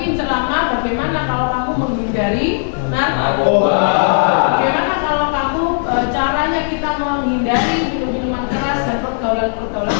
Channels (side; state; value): right; silent; digital silence